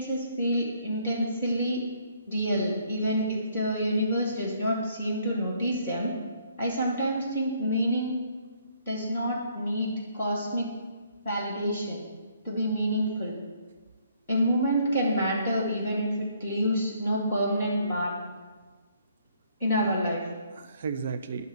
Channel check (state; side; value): inverted; both; correlation -0.66